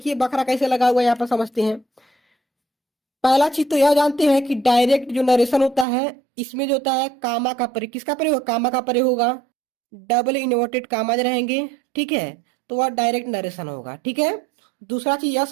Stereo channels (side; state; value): left; drops out; at 5.9 s